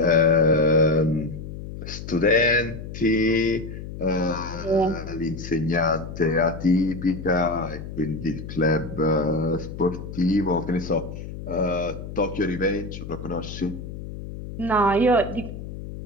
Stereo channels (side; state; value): left; noise; hum, 10 dB below the sound